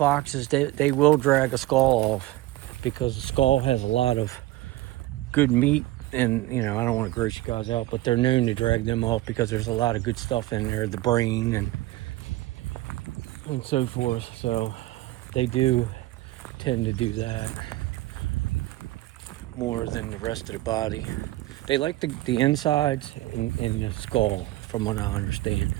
they will drag a skull off because the skull has a lot of good meat. And, you know, I don't want to gross you guys out, but they're known to drag them off because there's a lot of good stuff in there, the brain and so forth. So they do tend to do that more than the rest of the body. They like the insides and the skull, from what I understand.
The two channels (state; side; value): quieter; left; 17.4 dB